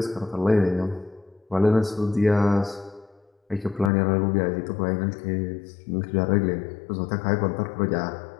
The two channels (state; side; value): drops out; right; at 3.9 s